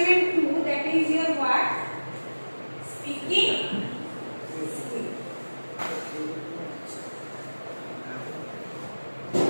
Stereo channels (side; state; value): both; inverted; correlation -1.00